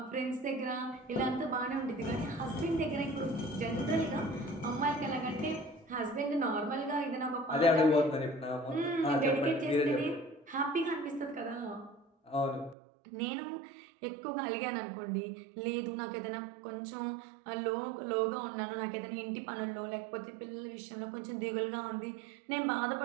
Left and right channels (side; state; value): left; drops out; at 12.8 s